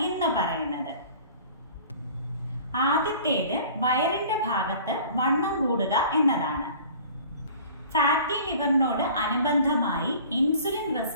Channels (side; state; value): both; inverted; correlation -0.46